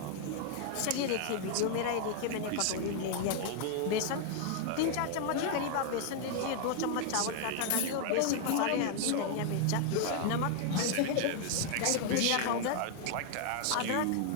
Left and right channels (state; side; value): different; both; correlation 0.00